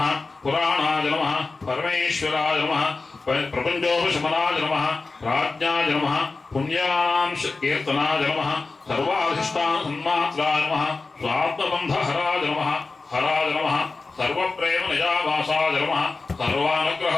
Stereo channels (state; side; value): quieter; right; 3.8 dB